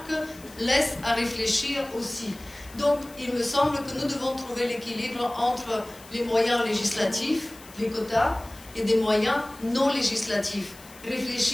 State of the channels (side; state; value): left; noise; hiss, 21 dB below the sound